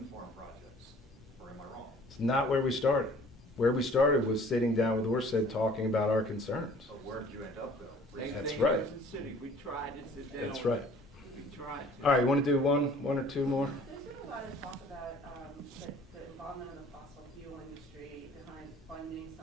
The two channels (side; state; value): both; normal; correlation 0.52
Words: farm projects, or am I wrong? It's not where we started. Where we started was sitting down with Orsted talking about our concerns. So where did you end up, though? That's right. We tried to sit down. That's right. We tried. All right, you want to do one or two more? There's been a lot of talk about the involvement of the fossil fuel industry behind funding